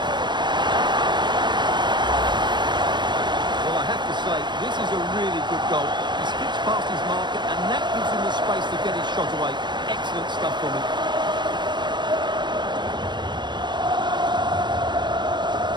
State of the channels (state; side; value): late; left; 0.22 ms